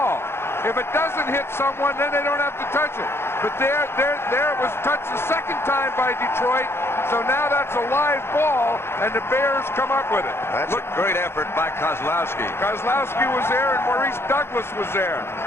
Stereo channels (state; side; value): late; right; 0.12 ms